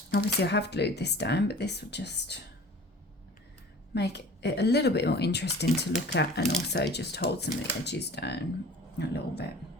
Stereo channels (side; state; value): both; normal; correlation 0.44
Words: obviously I have glued this down, but this will just make it a little bit more interesting to look at, and also just hold some of the edges down a little bit.